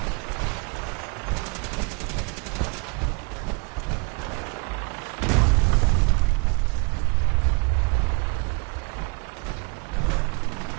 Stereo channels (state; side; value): quieter; left; 33.3 dB